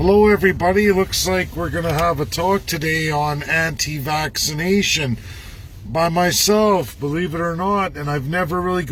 everybody, looks like we're going to have a talk today on anti-vaccination by myself, believe it or not, and I've never really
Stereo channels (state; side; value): identical; both; correlation 1.00